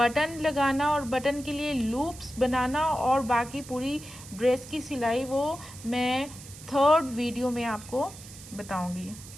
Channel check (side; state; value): right; noise; hiss, 16 dB below the sound